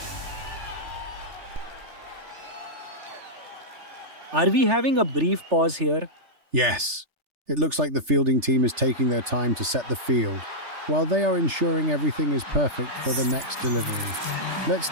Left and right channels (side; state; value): left; late; 3.3 ms